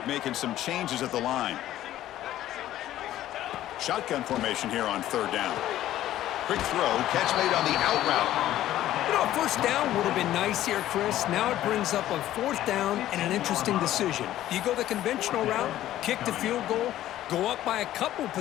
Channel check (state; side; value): quieter; right; 13.4 dB